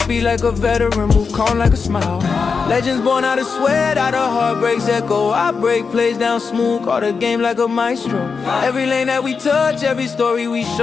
like a veteran, move calm like a smile. Legends born out of sweat, out of heartbreaks echo. I break plays down smooth, call the game like a maestro. Every lane that we touch, every story we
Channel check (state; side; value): quieter; right; 5.3 dB